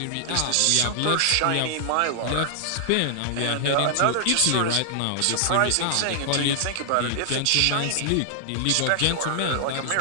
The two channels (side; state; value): both; different; correlation -0.01